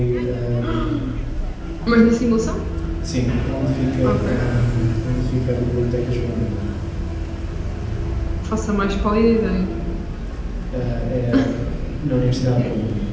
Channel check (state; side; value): identical; both; correlation 1.00